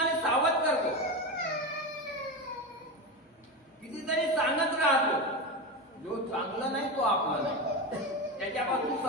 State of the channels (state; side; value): normal; both; correlation 0.19